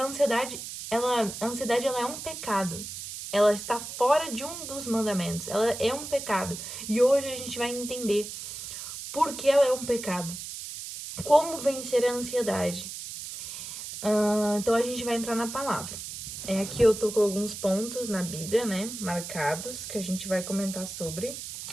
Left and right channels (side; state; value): right; noise; hiss, 9 dB below the sound